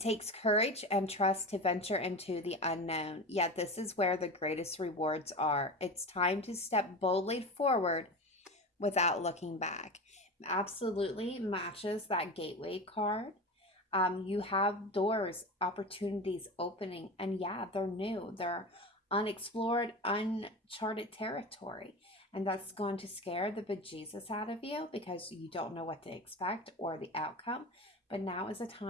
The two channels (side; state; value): both; normal; correlation 0.28